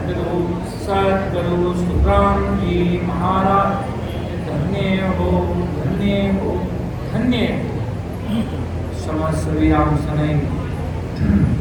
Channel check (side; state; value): both; identical; correlation 1.00